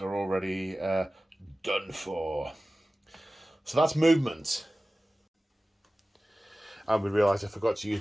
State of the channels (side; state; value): both; normal; correlation 0.96